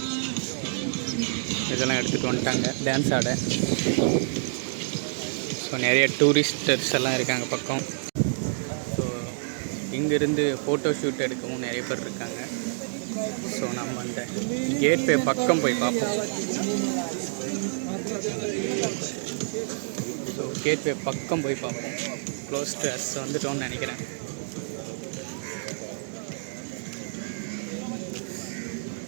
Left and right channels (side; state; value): left; silent; digital silence